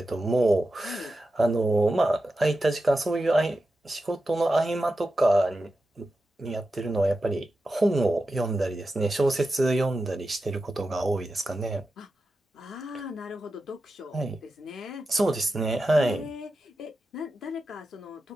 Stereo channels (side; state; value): both; normal; correlation 0.91